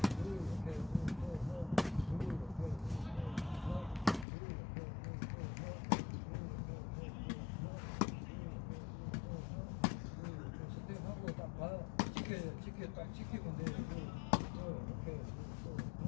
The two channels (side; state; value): right; drops out; at 4.2 s